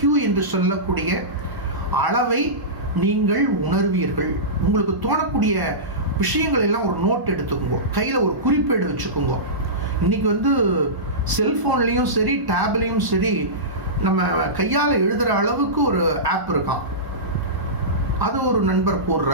என்று சொல்லக்கூடிய அளவை நீங்கள் உணர்வீர்கள். உங்களுக்கு தோணக்கூடிய விஷயங்கள் எல்லாம் ஒரு நோட் எடுத்துக்கோங்க, கையில் ஒரு குறிப்பேடு வச்சுக்கோங்க. இன்னைக்கு செல்ஃபோன்லேயும் சரி டேப்லேயும் சரி நம்ம கையால் எழுதுகிற அளவுக்கு ஒரு ஆப் இருக்கான். அது ஒரு நண்பர்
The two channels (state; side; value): late; left; 1.0 ms